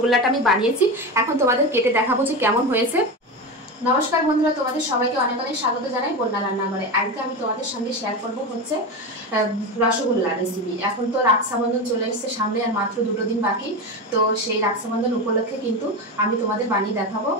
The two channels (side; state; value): both; normal; correlation 0.20